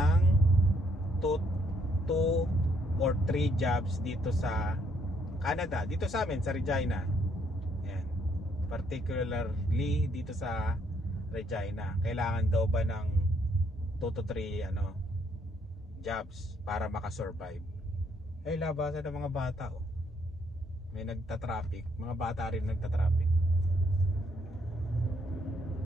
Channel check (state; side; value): normal; both; correlation 0.70